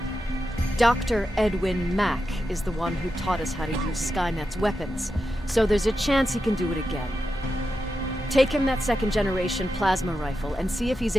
Dr. Edwin Mack is the one who taught us how to use Skynet's weapons, so there's a chance he can do it again. Take him that second-generation plasma rifle and see if he's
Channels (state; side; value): normal; both; correlation 0.89